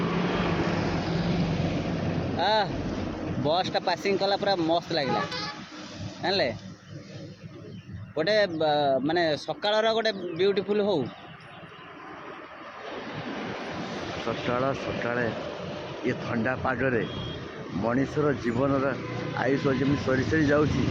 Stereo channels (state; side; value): identical; both; correlation 1.00